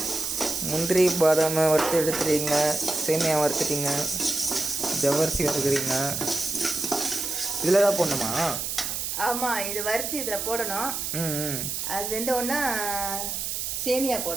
முந்திரி பாதாமை வறுத்து எடுத்துறீங்க, சேமியா வறுத்துட்டீங்க, ஜவ்வரிசி வறுக்கிறீங்க. இதில் தான் போடணுமா? ஆமாம், இது வறுத்து இதில் போடணும். அது வெந்த உடனே சேமியா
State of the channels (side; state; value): right; noise; hiss, 3 dB below the sound